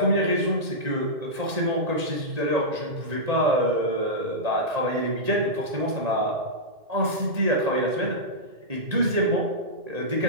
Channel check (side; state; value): left; late; 1.9 ms